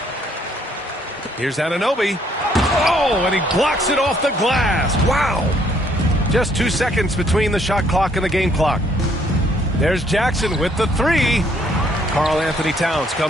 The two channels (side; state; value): both; normal; correlation 0.66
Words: Here's Anunoby. Oh, and he blocks it off the glass. Wow. Just 2 seconds between the shot clock and the game clock. There's Jackson with the 3. Karl Anthony Towns